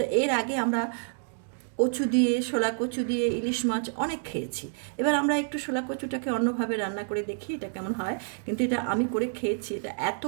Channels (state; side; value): silent; left; digital silence